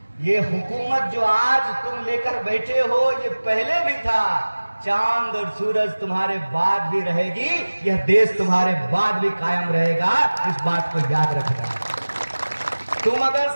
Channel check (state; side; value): inverted; both; correlation -1.00